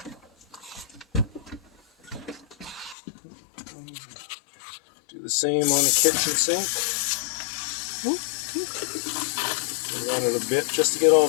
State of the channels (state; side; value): drops out; right; at 3.0 s